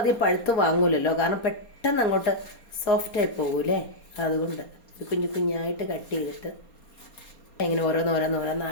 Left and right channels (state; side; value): late; right; 4.3 ms